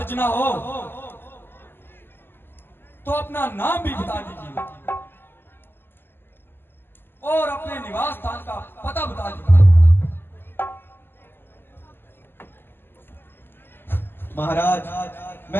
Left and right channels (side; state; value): right; late; 0.10 ms